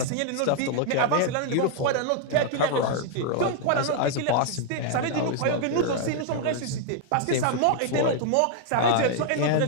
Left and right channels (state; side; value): different; both; correlation 0.00